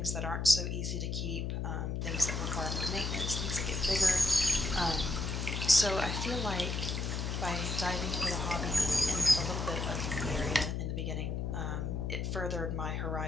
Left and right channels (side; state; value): left; noise; hum, 2 dB below the sound